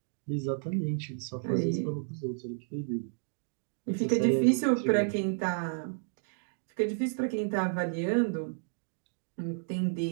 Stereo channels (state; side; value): silent; left; digital silence